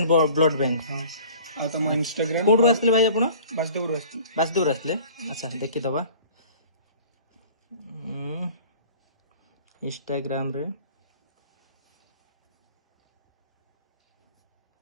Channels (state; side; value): inverted; both; correlation -0.46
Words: blood bank हां आ तुम इंस्टाग्राम कोड आसले भाई आपण वासुदेव रोस्ती वासुदेव आसले अच्छा देखि दबा इंस्टाग्राम रे